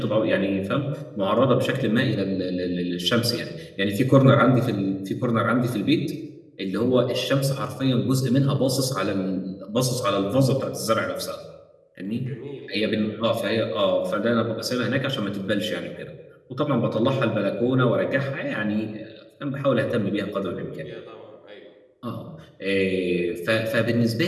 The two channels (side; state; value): both; identical; correlation 1.00